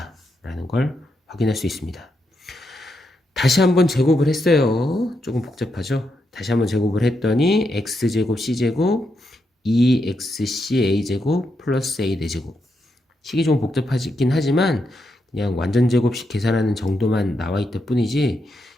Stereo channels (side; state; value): both; normal; correlation 0.82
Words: 라는 걸 확인할 수 있습니다. 다시 한번 제곱을 했어요. 조금 복잡하죠? 다시 한번 제곱을 했더니 x제곱 c제곱 2xca제곱 플러스 a 대제곱 식이 좀 복잡하긴 하지만 그냥 완전 제곱식 계산하는 정도만 나와 있다 뿐이지